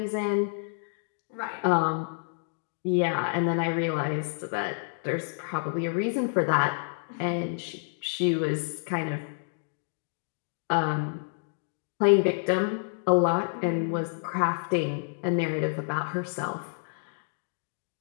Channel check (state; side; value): silent; right; digital silence